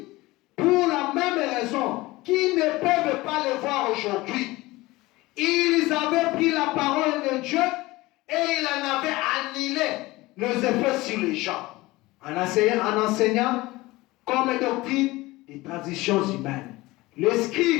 Pour la même raison qu'ils ne peuvent pas le voir aujourd'hui. Ils avaient pris la parole de Dieu et ils en avaient annihilé les effets sur les gens. En enseignant comme doctrine des traditions humaines. Les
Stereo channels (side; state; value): right; quieter; 20.1 dB